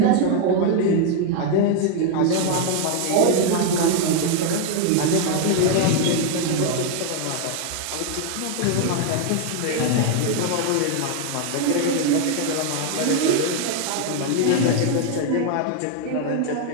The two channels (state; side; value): different; both; correlation 0.00